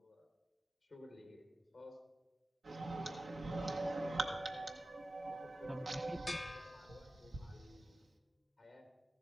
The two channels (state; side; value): normal; both; correlation 0.95